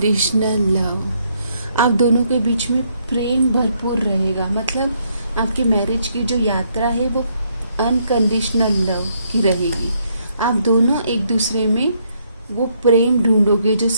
लव, आप दोनों के बीच में प्रेम भरपूर रहेगा। मतलब आपकी मैरिज की जो यात्रा है वो अनकंडीशनल लव की रहेगी। आप दोनों एक दूसरे में वो प्रेम ढूंढोगे, जो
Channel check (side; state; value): both; inverted; correlation -0.72